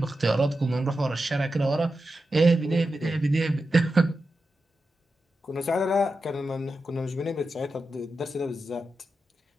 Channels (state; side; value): normal; both; correlation 0.90